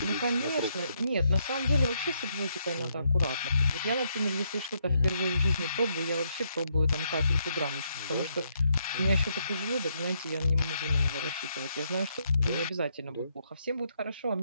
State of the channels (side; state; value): both; inverted; correlation -0.76